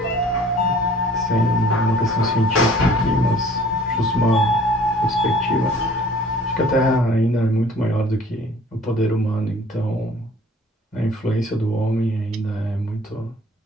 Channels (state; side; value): normal; both; correlation 0.51